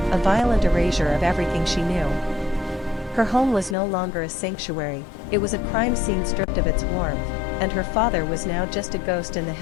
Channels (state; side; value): drops out; right; at 3.8 s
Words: a violent erasure of everything she knew. Her home was no longer a sanctuary, it was a crime scene stripped of its warmth, and her father was now just a ghost in the